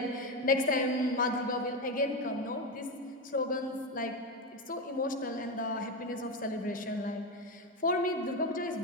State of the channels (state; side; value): normal; both; correlation 0.14